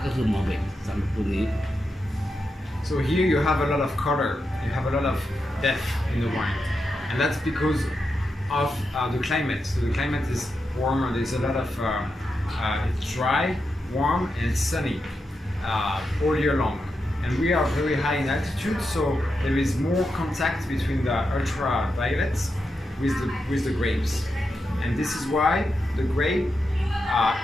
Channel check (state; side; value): normal; both; correlation 0.87